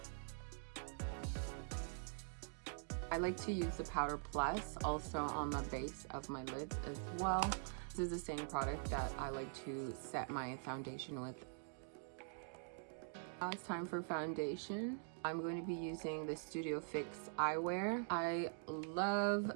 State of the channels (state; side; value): silent; left; digital silence